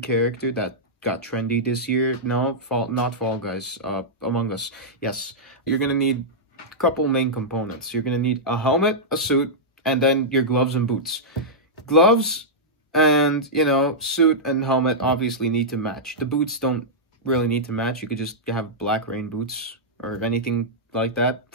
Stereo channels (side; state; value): both; normal; correlation -0.10